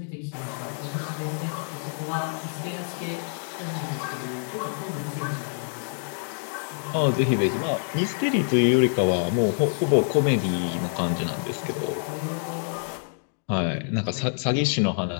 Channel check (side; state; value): right; silent; 58 dB below the other